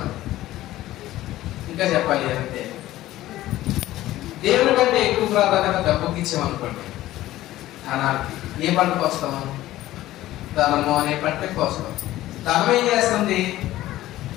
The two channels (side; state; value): right; quieter; 15.3 dB